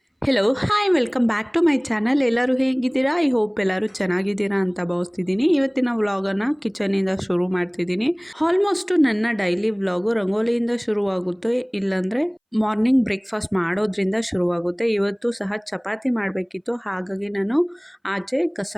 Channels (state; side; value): identical; both; correlation 1.00